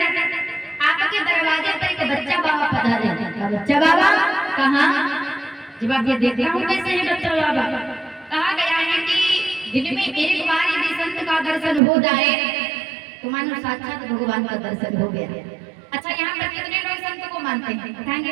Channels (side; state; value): left; drops out; at 11.8 s